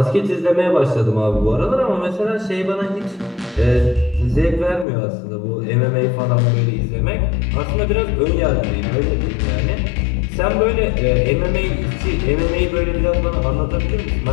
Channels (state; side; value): drops out; right; at 4.9 s